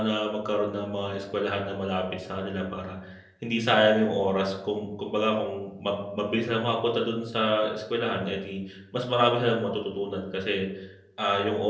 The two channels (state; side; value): identical; both; correlation 1.00